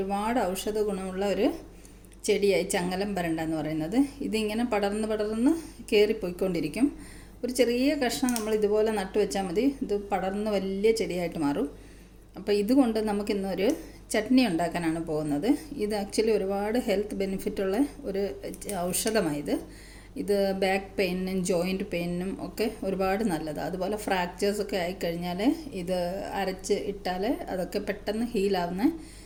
ഔഷധ ഗുണമുള്ള ഒരു ചെടിയായി ചങ്ങലം പരണ്ട എന്ന് പറയുന്നത്. ഇതിങ്ങനെ പടർന്ന് കയറിപ്പോയിക്കൊണ്ടിരിക്കും. ഒരു ചെറിയ കഷ്ണം നമ്മൾ ഇതുപോലെ നട്ടു വെച്ചാൽ മതി, ഇത് പടർന്ന് വലിയ ചെടിയായിട്ട് മാറും. അപ്പോൾ ഇതുകൊണ്ട് നമുക്കിന്നൊരു ചട്നി ഉണ്ടാക്കാനാണ് പോകുന്നത്. ഇത് ആക്ച്വലി ഒരുപാട് ഹെൽത്ത് ബെനിഫിറ്റുള്ള ഒരു ഔഷധമായത്. ഇത് ബാക്ക് പെയിനും ജോയിൻറ്റ് പെയിനും ഒക്കെ ഒരുപാട് നല്ലതാണ്. അതുപോലെ ഫ്രാക്ചേഴ്സൊക്കെ ആയിക്കഴിഞ്ഞാൽ ഇത് അരച്ച് ഇട്ടാൽ അതൊക്കെ പെട്ടെന്ന് ഹീലാവുന്ന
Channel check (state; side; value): identical; both; correlation 1.00